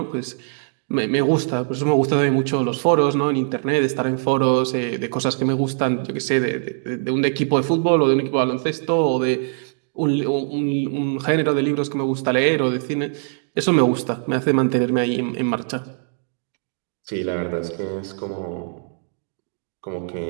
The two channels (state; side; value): silent; left; digital silence